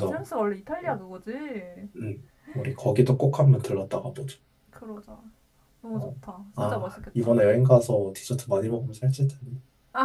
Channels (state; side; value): identical; both; correlation 1.00